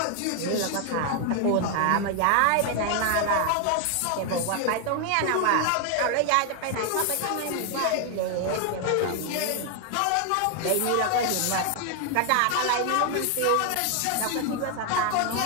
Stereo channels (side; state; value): both; different; correlation 0.00